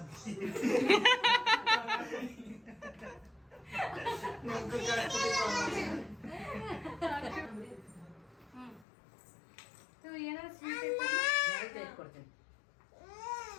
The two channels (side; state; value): right; drops out; at 8.8 s